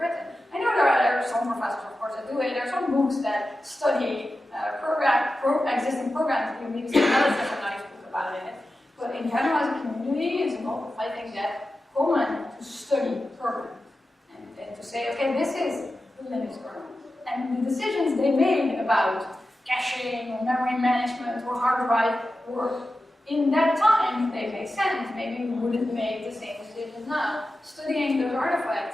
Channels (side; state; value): both; normal; correlation 0.93